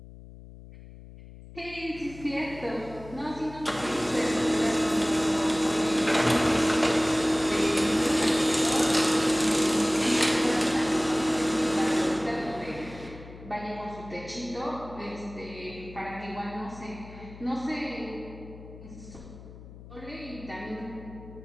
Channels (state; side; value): noise; left; hum, 17 dB below the sound